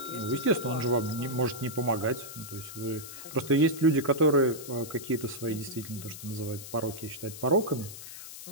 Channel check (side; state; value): left; noise; hiss, 12 dB below the sound